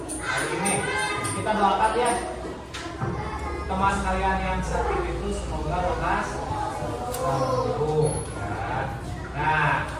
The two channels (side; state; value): both; identical; correlation 1.00